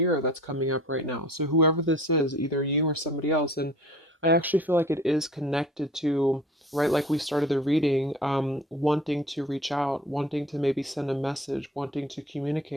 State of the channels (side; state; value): both; normal; correlation 0.46